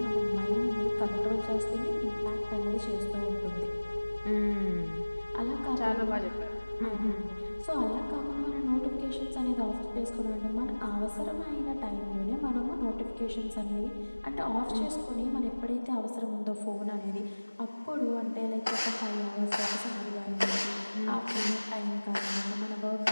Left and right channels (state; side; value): inverted; both; correlation -1.00